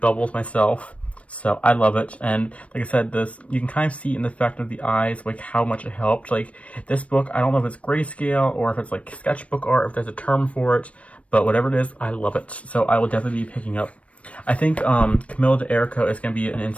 myself. So I love it, and like I said, you can kind of see in the effect of the eyes, how much it helped. This book, I don't know if it's grayscale or if it's sketchbook art, if there's a term for it, but whatever it is, I love it. So I will definitely be picking up. I think Camilla DeErico is going to be an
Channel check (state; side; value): late; right; 0.063 ms